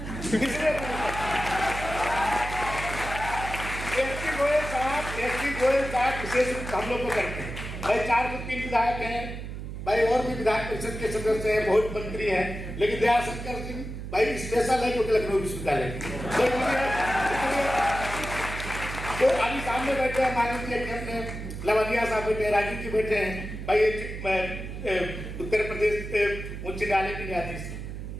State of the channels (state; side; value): noise; right; hum, 8 dB below the sound